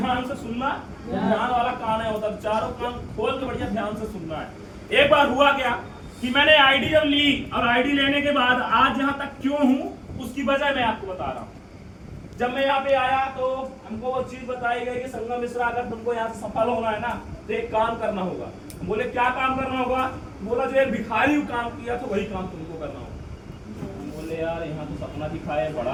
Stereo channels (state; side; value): identical; both; correlation 1.00